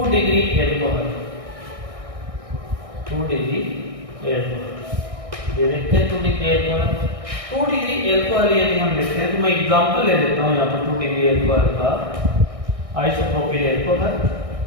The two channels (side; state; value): left; late; 1.6 ms